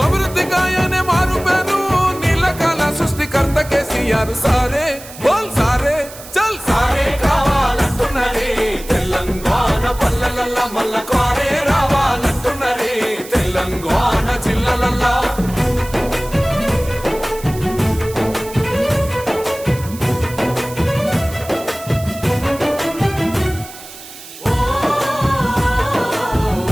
అభివృద్ధి గాయనే మారు పేరు నీళ్ళకాల సృష్టికర్త కేసీఆర్ సారే బోల్ సారే చల్ సారే కావాలంటున్నరే తెలంగాణ పల్లెలల్ల మల్ల కారే రావాలంటున్నరే తెలంగాణ జిల్లాలల్లో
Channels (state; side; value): noise; right; hiss, 16 dB below the sound